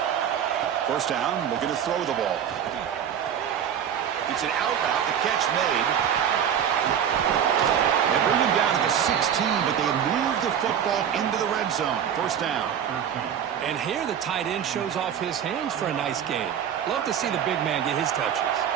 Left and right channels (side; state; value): left; quieter; 8.8 dB